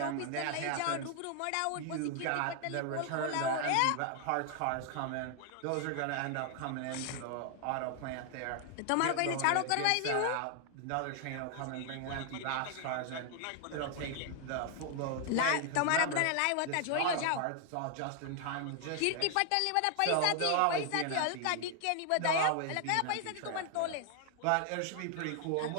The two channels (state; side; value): different; both; correlation 0.00